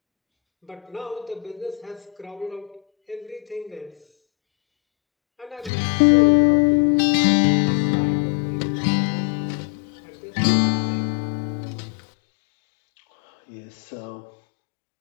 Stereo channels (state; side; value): drops out; right; at 5.7 s